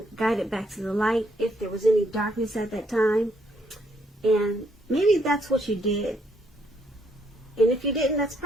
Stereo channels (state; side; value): normal; both; correlation 0.72